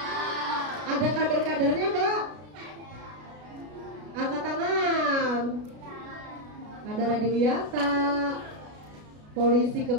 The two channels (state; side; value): late; left; 33 ms